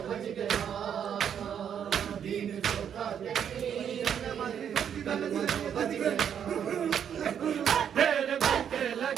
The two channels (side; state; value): left; quieter; 8.5 dB